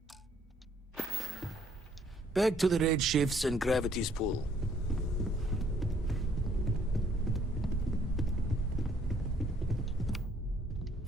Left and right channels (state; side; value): normal; both; correlation 0.64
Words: Back to the red shifts and gravity's pull.